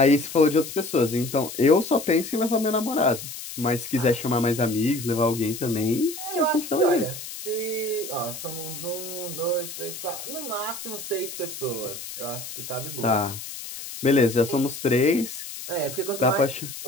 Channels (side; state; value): left; noise; hiss, 10 dB below the sound